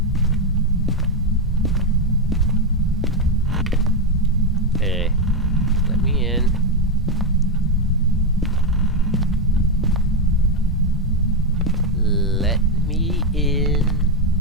Hey, let me in. Let me in.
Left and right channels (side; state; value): both; normal; correlation 0.05